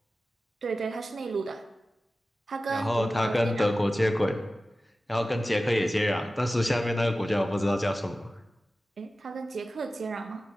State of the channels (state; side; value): normal; both; correlation 0.95